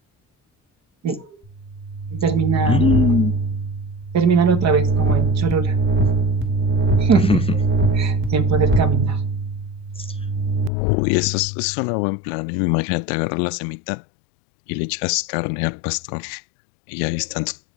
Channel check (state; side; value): drops out; right; at 10.7 s